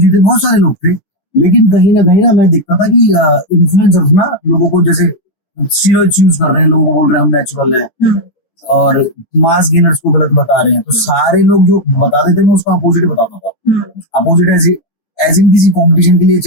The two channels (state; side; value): late; right; 10 ms